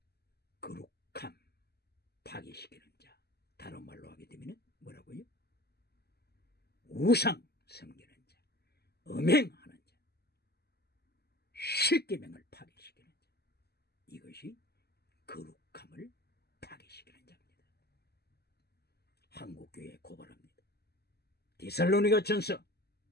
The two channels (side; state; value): right; late; 0.47 ms